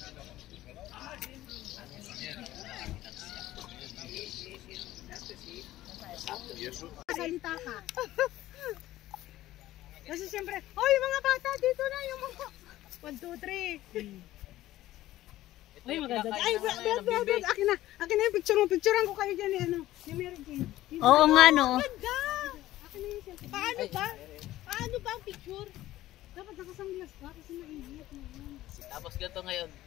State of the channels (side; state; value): right; quieter; 15.2 dB